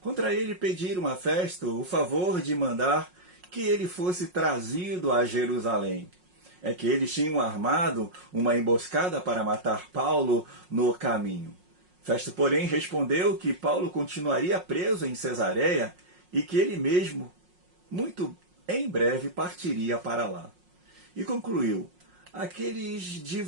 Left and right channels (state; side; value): late; left; 5.5 ms